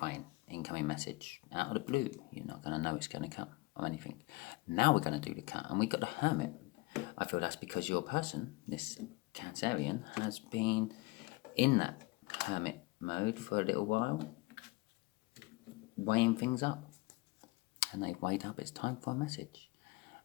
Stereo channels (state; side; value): quieter; right; 23.1 dB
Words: incoming message out of the blue. You're not going to know it's going to come or anything. Now we're going to do the cut, and we got the Hermit. I feel that's because your person, this Cancerian, has been in that Hermit mode for a little while, weighing things up, and they've weighed up it's time for a message